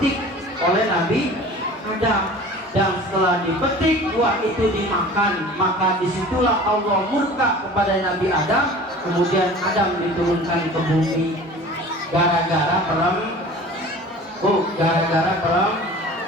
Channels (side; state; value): both; normal; correlation 0.42